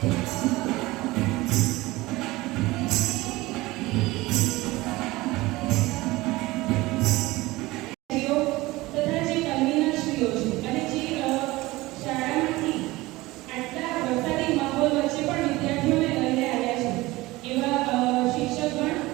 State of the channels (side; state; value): left; quieter; 19.9 dB